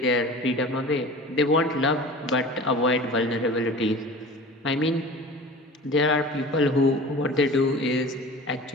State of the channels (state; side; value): normal; both; correlation 0.38